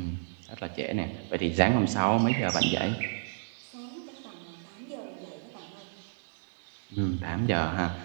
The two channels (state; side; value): silent; left; digital silence